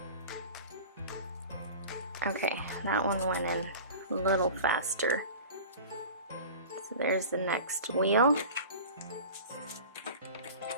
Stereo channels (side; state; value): both; inverted; correlation -0.36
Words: Okay, that one went in a little faster. So there's the next wheel.